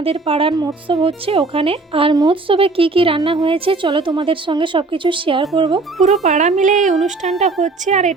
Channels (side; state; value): left; quieter; 3.6 dB